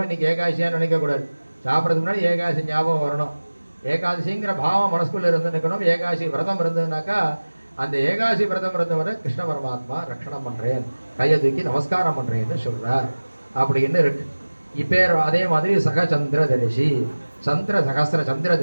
இன்னைக்கு ஏகாசியா நினைக்கக்கூடாது. சாப்பிட்றதுக்கு முன்னாடி ஏகாசி ஞாபகம் வரணும். ஏகாதசிங்கிற பாவம் மனசுக்குள்ள இருந்து நிற்கணும். ஏகாசி விரதம் இருந்ததுனாக்கா அந்த ஏகாசி விரதம் இருந்தவரை கிருஷ்ண பரமாத்மா ரட்சணம் பண்றேன், கையை தூக்கி நமஸ்காரம் பண்றேன்னு சொல்றார் அப்படின்னு இருக்கு. இப்போ அதே மாதிரி சகச்சந்திர தரிசி, சகஸ்திர சந்திர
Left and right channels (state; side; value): inverted; both; correlation -1.00